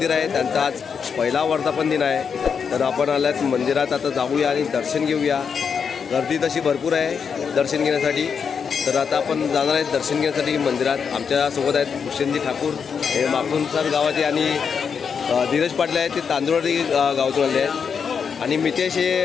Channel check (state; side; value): quieter; right; 6.4 dB